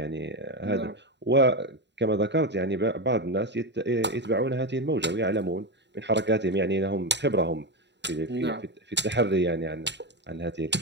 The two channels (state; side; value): late; left; 0.51 ms